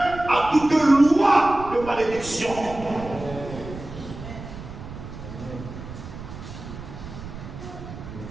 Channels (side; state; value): right; noise; rumble, 12 dB below the sound